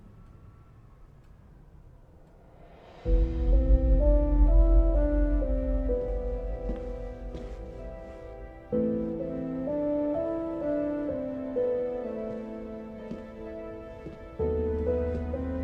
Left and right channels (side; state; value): both; identical; correlation 1.00